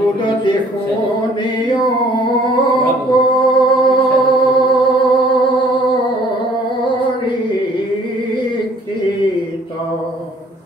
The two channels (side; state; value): both; normal; correlation 0.57